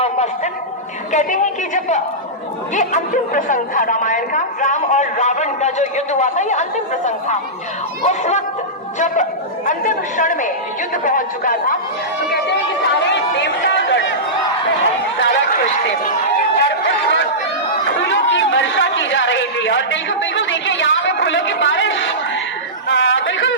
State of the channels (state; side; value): normal; both; correlation -0.15